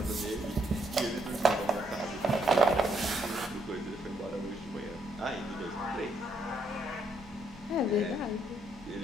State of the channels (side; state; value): both; normal; correlation 0.73